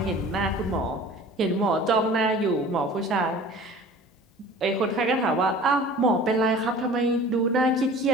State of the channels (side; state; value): both; normal; correlation 0.44